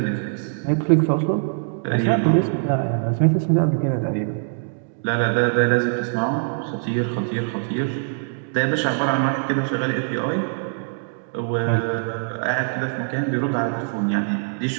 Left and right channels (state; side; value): silent; left; digital silence